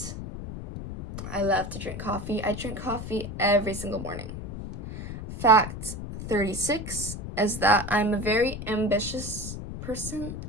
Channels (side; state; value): left; noise; rumble, 8 dB below the sound